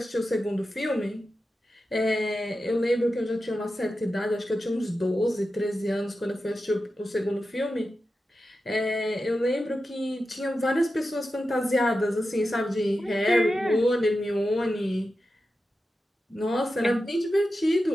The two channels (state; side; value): normal; both; correlation 0.91